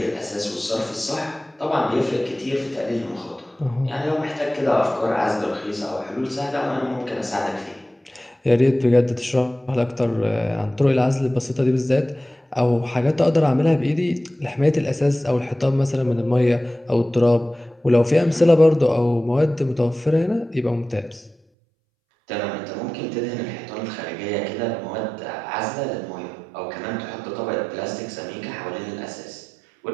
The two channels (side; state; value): left; drops out; at 21.4 s